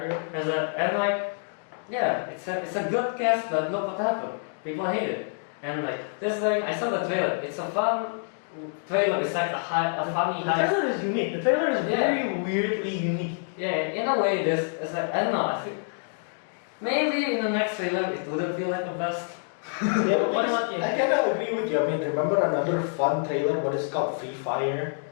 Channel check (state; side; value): silent; right; 60 dB below the other